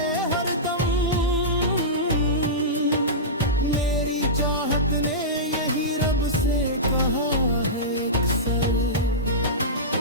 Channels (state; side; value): normal; both; correlation -0.16